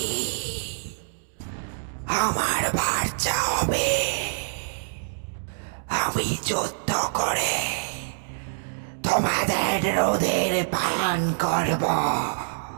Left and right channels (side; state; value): left; silent; digital silence